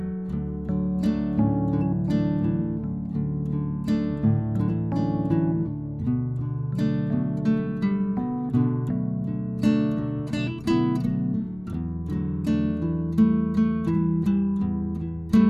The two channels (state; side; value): noise; left; rumble, 24 dB below the sound